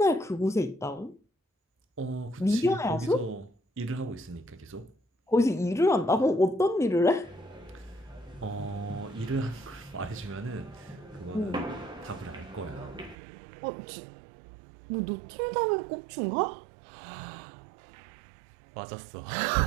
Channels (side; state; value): left; drops out; at 13.2 s